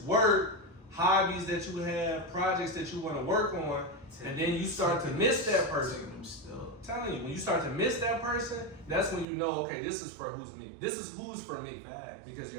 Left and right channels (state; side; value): drops out; left; at 9.2 s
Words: work, hobbies that you have, projects that you want to work on, and then you start to miss that person. I'm telling you, when you start to miss that person, that's when you know, okay, this is for who's me. This is who's for me. Because